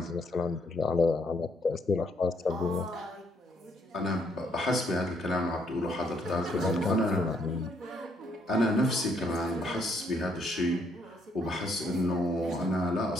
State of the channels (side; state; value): both; normal; correlation 0.71